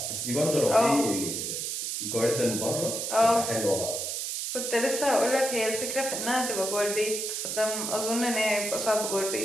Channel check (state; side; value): noise; right; hiss, 3 dB below the sound